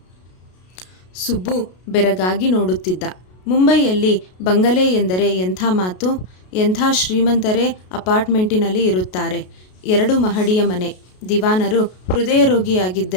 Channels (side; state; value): right; late; 33 ms